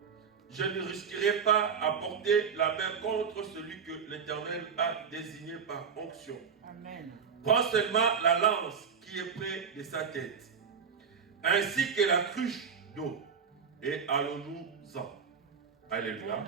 je ne risquerai pas à porter la main contre celui que l'Éternel a désigné par onction. Amen. Prends seulement la lance qui est près de sa tête, ainsi que la cruche d'eau, et allons-nous-en. Alléluia.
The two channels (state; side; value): quieter; left; 6.5 dB